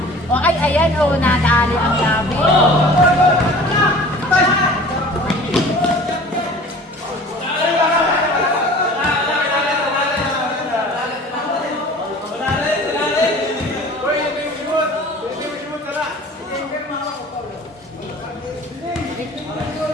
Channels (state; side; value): normal; both; correlation 0.44